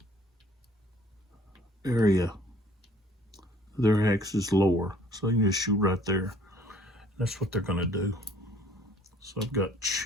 area. Their hex is lower, so you can just shoot right there. That's what they're going to do. So I've got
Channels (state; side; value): normal; both; correlation 0.56